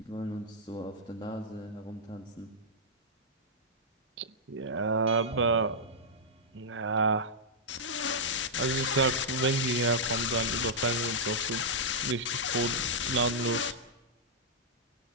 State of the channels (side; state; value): both; normal; correlation -0.08